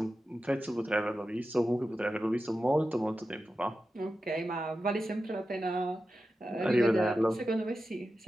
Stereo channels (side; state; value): both; normal; correlation 0.92